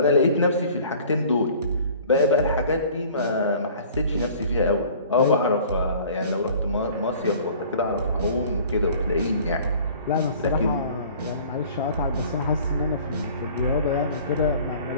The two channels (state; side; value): inverted; both; correlation -0.49